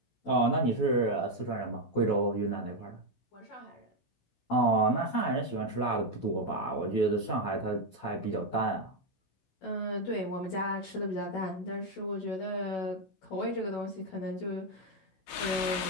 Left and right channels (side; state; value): right; late; 16 ms